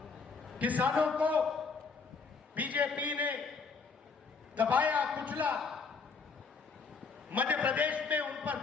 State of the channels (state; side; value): quieter; right; 4.8 dB